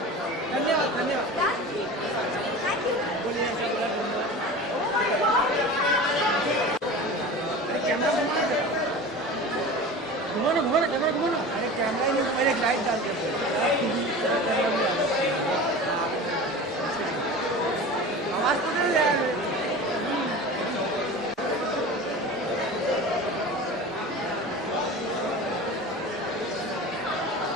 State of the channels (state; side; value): normal; both; correlation 0.34